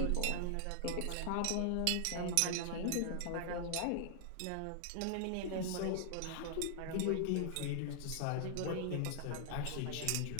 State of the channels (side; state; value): both; different; correlation -0.01